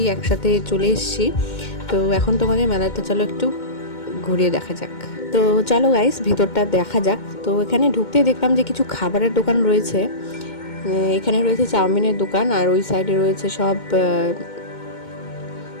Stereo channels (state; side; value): late; right; 2.2 ms